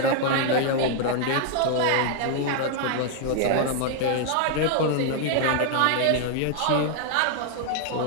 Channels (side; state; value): both; different; correlation 0.00